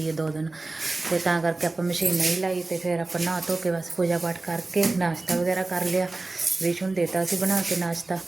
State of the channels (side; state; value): left; quieter; 3.2 dB